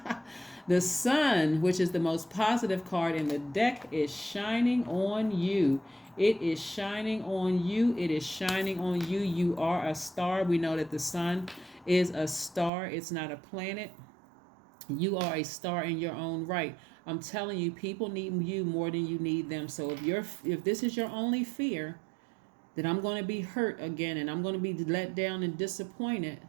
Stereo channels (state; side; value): drops out; left; at 12.7 s